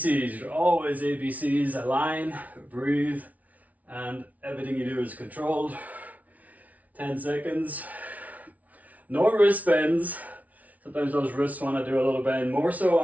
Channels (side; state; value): left; late; 0.071 ms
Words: you're always ABCs. Align, breathe, and everything you do is controlled. 10 seconds. No wrist bends. Sometimes those wrists want to do a little bend, more so